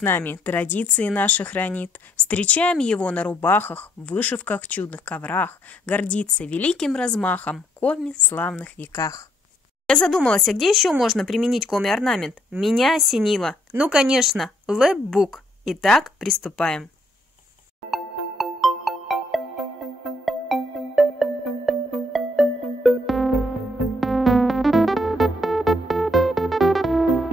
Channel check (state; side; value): normal; both; correlation 0.69